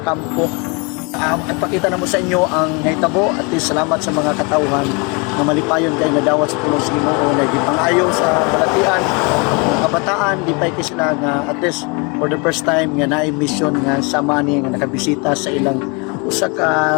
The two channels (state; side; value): quieter; right; 30.6 dB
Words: Ipakita na mo sa inyo ang nahitabo at salamat sa mga katauhan na malipayon kay nga dawat sa tulong sa Ginoo na gipangayo sa balatian ng kabataan di pa kay sila nga at least for the first time nga naay mission nga sama ni nga nakabisita sa ilang usa